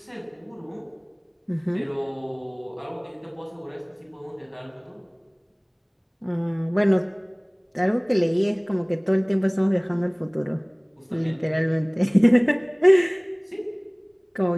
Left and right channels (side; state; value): both; identical; correlation 1.00